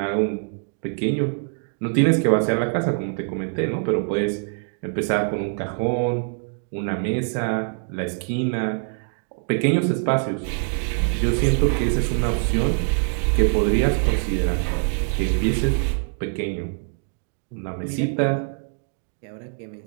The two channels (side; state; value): left; silent; 60 dB below the other